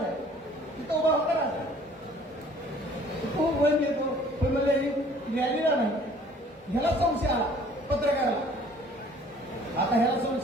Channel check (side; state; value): both; normal; correlation 0.54